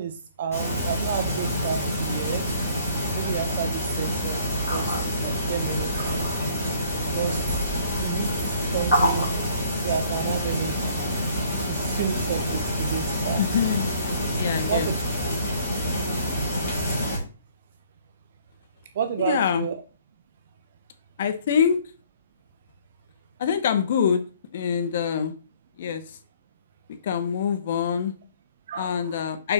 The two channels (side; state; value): both; inverted; correlation -0.58